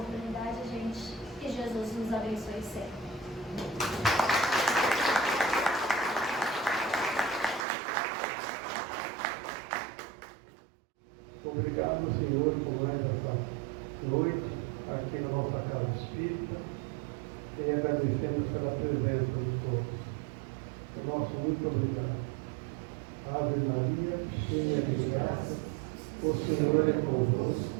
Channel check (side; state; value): left; drops out; at 7.7 s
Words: gente. Que Jesus nos abençoe sempre. Obrigado, Senhor, por mais essa noite aqui na nossa casa espírita e agradecemos pela presença de todos. O nosso muito obrigado. Ave Maria, cheia de graça, o Senhor é